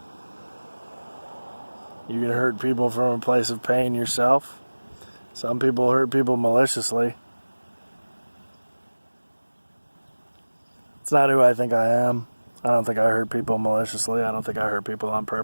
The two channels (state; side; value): inverted; both; correlation -1.00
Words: You can hurt people from a place of pain yourself. Some people hurt people maliciously. It's not who I think I am. I don't think I hurt people maliciously. I don't think I hurt people on